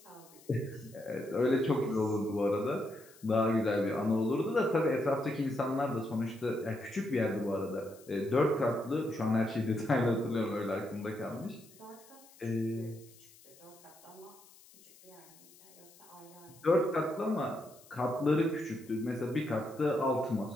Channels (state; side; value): noise; left; hiss, 24 dB below the sound